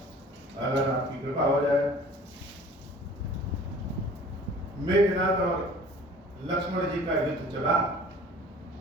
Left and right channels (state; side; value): normal; both; correlation 0.48